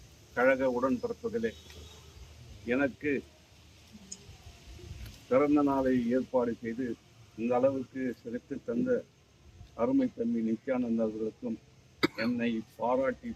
கழக உடன்பிறப்புகளே, எனக்கு பிறந்த நாளை ஏற்பாடு செய்து இந்த அளவுக்கு சிறப்பு தந்த அருமை தம்பி நித்யானந்த அவர்களுக்கும் என்னை பாராட்டி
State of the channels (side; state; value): both; identical; correlation 1.00